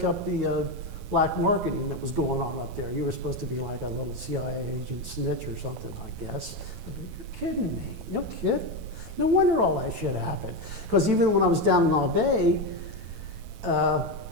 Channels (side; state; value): left; late; 13 ms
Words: up the black marketing that was going on up there. You were supposed to be like a little CIA agent snitch or something, I guess. I go, you're kidding me. No kidding. No wonder all that shit happened. Because even when I was down in Naval,